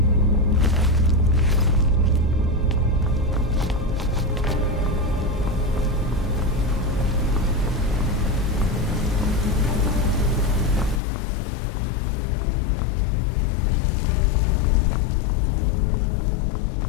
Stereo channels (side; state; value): right; drops out; at 11.0 s